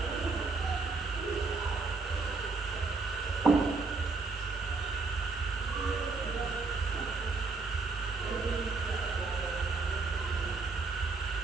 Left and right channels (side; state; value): left; quieter; 4.0 dB